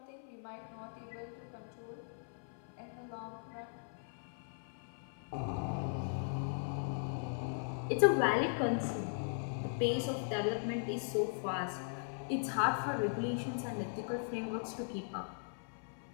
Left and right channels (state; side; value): silent; right; 52 dB below the other